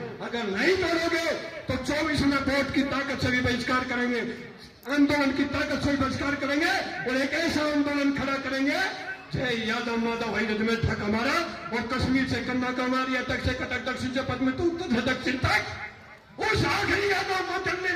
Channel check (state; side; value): identical; both; correlation 1.00